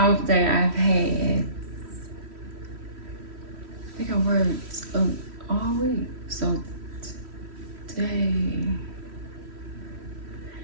day I've had. I think I worked all week. So today,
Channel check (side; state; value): left; late; 3.1 ms